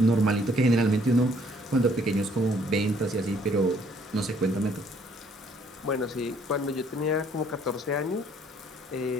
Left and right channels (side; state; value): both; normal; correlation 0.63